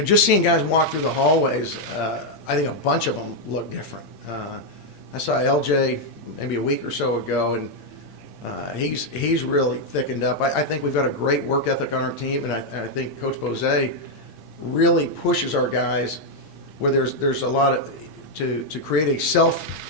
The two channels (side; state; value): right; late; 8.6 ms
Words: Just seeing guys walk through the hallways, I think a bunch of them look different. I saw LJ maybe a week or so ago, and he's really thickened up. I think we've got a great work ethic on our team, and I think Coach Bose really pushes our guys where there's a lot of to create a self